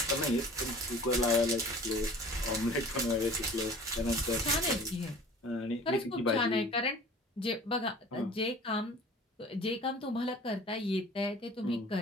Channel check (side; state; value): both; normal; correlation 0.45